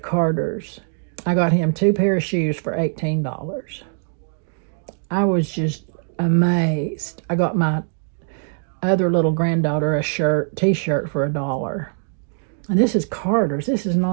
Carter's. I got him 2 pair of shoes for $18. I was just amazed. I got my other little granddaughter a t-shirt for $1. And this is Carter's. This is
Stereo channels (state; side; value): silent; left; digital silence